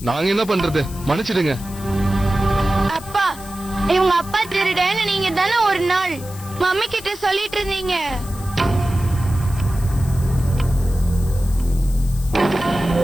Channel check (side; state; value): left; noise; hiss, 17 dB below the sound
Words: நாங்க என்ன பண்றது? மன்னிச்சிடுங்க. அப்பா, இவங்க அப்பா திருடன்னு நீங்க தானே ஒரு நாள் மம்மி கிட்ட சொல்லிட்டு இருந்தீங்க.